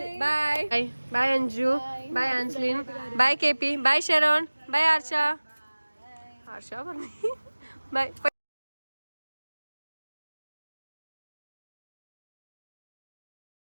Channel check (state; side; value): inverted; both; correlation -1.00